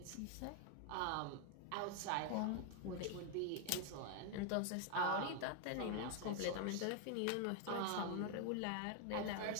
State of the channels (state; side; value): different; both; correlation 0.00